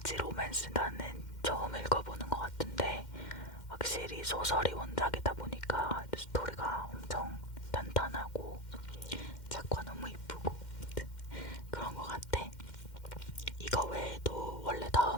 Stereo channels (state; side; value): late; right; 2.1 ms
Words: 로맨스 나는 처음 읽어보는 것 같은데 확실히 소설이 원작이다 보니까 스토리가 엄청 탄탄하고 작화 너무 이쁘고 그런 것 같아. 이거 외에도 원래